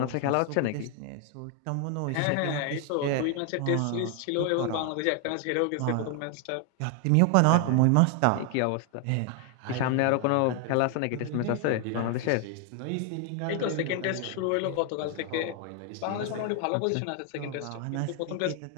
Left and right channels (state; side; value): different; both; correlation 0.00